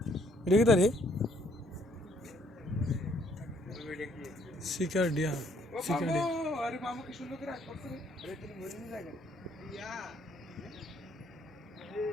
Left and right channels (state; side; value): normal; both; correlation 0.66